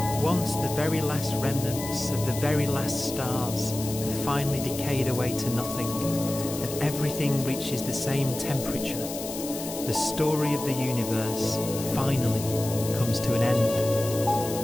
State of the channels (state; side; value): noise; left; hiss, 9 dB below the sound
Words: Once the very last remnants of the very last stars have finally decayed away to nothing, and everything reaches the same temperature, the story of the universe finally comes to an end.